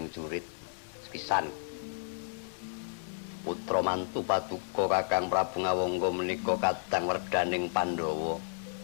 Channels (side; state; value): right; silent; 56 dB below the other